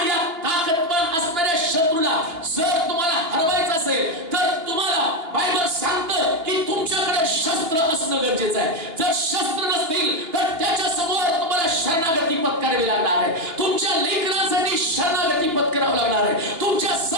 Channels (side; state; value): left; late; 2.9 ms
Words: या ताकदवान असणाऱ्या शत्रूला जर तुम्हाला हरवायचं असेल तर तुम्हाला बायबल सांगतं की तुमच्याकडे शस्त्र असणं गरजेचं आहे. जर शस्त्र नसतील तर त्याच्या समोर तुम्हाला शरणागती पत्करावी लागणार आहे. तुमच्या लेकरांसाठी शरणागती पत्करावं लागणार आहे. तुमच्या